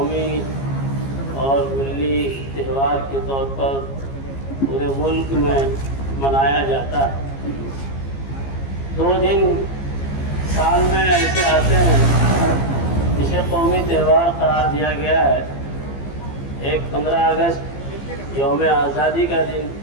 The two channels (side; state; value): right; late; 15 ms